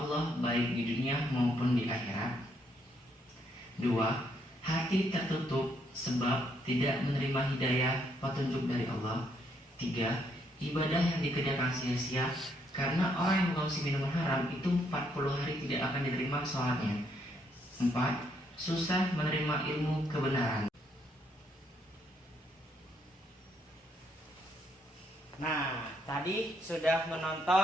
baik di dunia maupun di akhirat. 2. Hati tertutup sebab tidak menerima hidayah petunjuk dari Allah. 3. Ibadah yang dikerjakan sia-sia karena orang yang mengkonsumsi minuman haram itu 40 hari tidak akan diterima sholatnya. 4. Susah menerima ilmu kebenaran. Nah, tadi sudah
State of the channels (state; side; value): normal; both; correlation 0.72